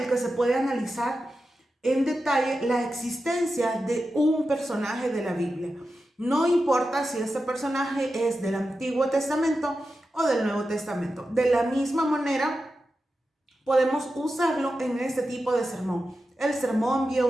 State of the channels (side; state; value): both; normal; correlation 0.91